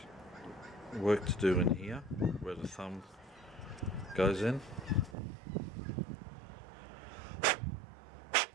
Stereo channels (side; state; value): left; drops out; at 5.2 s